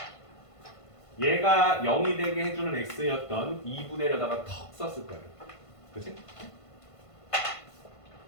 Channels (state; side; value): late; right; 1.5 ms